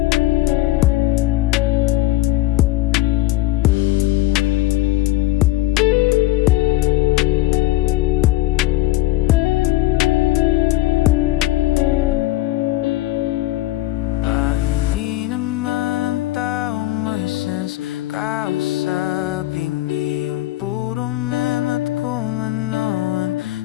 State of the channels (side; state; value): right; quieter; 16.4 dB